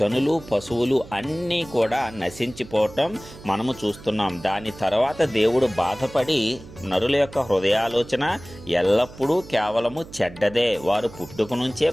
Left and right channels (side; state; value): right; noise; hum, 18 dB below the sound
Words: పశువులు అన్నీ కూడా నశించిపోవటం మనము చూస్తున్నాం. దాని తర్వాత దేవుడు బాధపడి నరుల యొక్క హృదయాలోచన ఎల్లప్పుడూ కేవలము చెడ్డదే, వారు పుట్టుక నుంచే